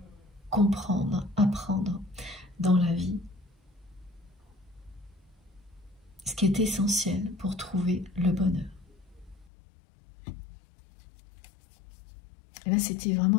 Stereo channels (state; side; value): drops out; right; at 9.5 s